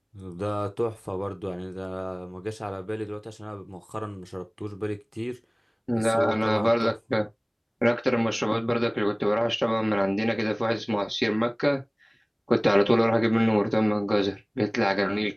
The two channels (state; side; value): identical; both; correlation 1.00